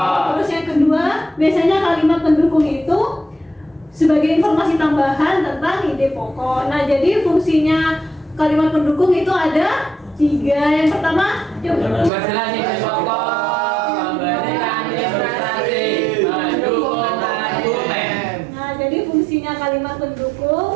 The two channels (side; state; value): left; drops out; at 12.1 s